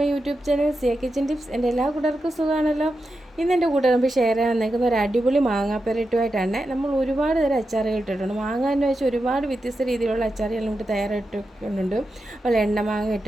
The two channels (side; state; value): both; normal; correlation 0.89